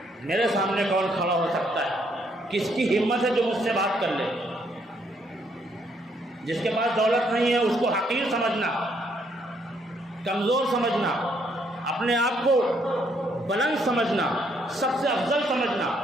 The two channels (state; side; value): normal; both; correlation 0.71